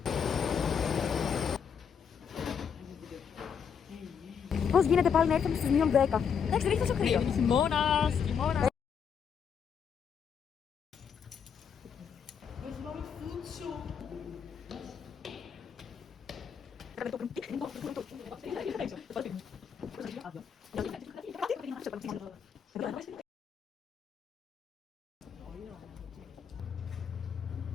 Πώς γίνεται πάλι να έρθουμε στις μείον 10. Εντάξει, δεν έχει τόσο κρύο. Χειμώνας, χειμώνας.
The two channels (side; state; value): right; quieter; 7.2 dB